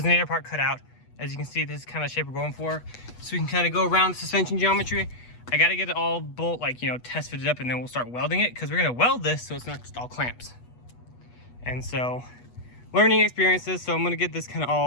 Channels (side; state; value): right; late; 8.2 ms